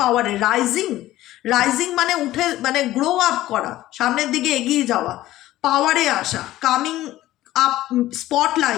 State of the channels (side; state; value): right; quieter; 15.3 dB